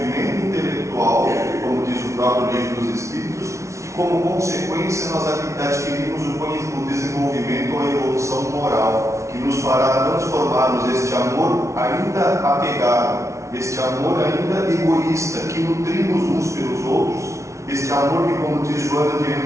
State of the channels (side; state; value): left; late; 0.14 ms